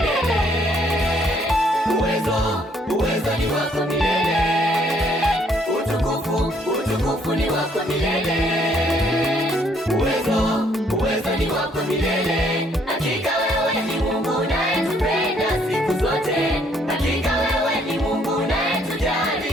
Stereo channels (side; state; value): both; normal; correlation 0.66